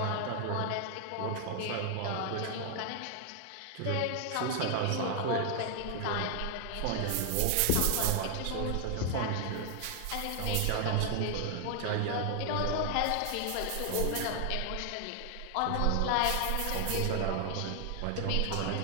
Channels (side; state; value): both; different; correlation 0.00